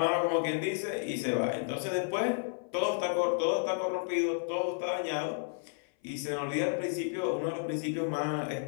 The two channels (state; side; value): silent; right; 55 dB below the other